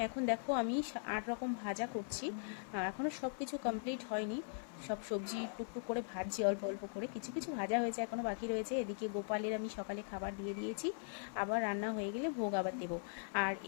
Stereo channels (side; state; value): right; silent; 51 dB below the other